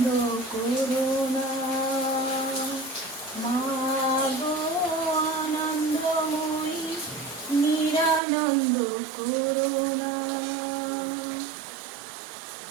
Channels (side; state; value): left; drops out; at 8.2 s